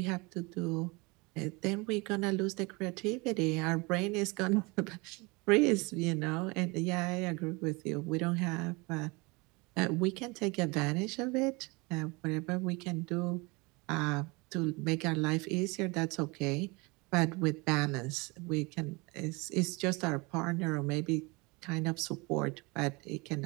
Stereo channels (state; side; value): quieter; left; 26.5 dB